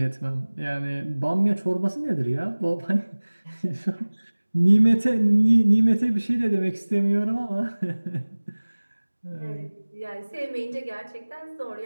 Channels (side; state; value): both; inverted; correlation -1.00